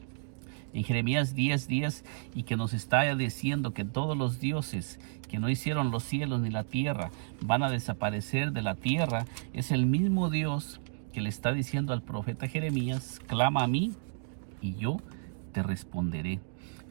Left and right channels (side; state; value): left; silent; digital silence